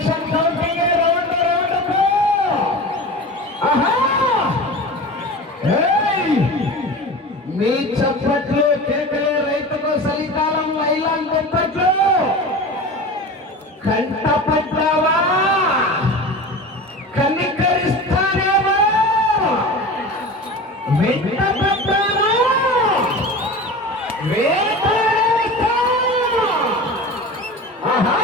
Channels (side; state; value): both; normal; correlation 0.32